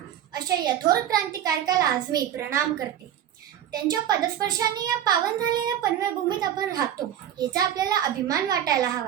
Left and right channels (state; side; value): quieter; left; 10.6 dB